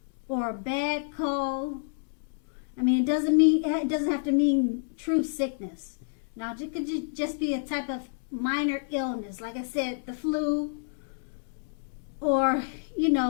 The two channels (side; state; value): right; silent; digital silence